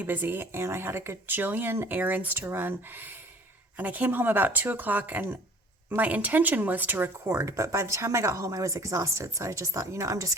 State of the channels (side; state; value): both; normal; correlation 0.50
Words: busy and I had a gajillion errands to run. And I came home about 2 o'clock and my intention was to record, but by the time I got home, I was exhausted. So I just thought, I'm just